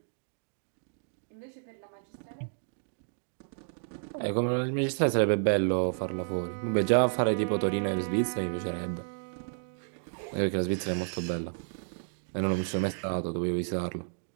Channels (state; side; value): silent; left; digital silence